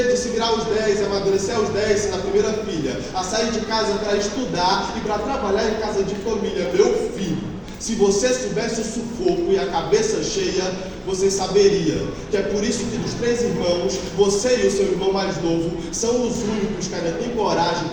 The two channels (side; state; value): both; identical; correlation 1.00